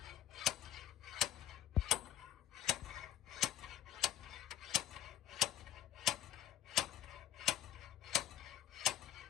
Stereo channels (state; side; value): quieter; right; 11.9 dB